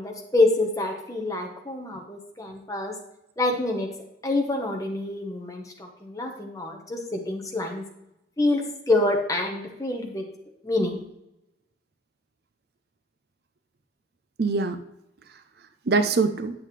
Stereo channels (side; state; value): both; normal; correlation 0.55